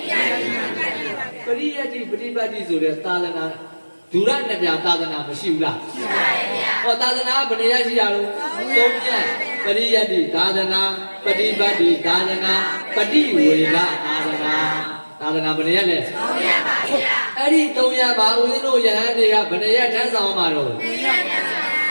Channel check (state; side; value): inverted; both; correlation -1.00